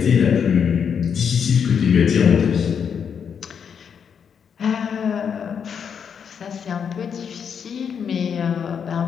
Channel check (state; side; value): quieter; right; 7.2 dB